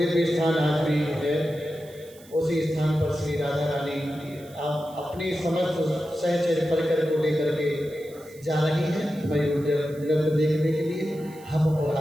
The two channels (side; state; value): right; noise; hiss, 24 dB below the sound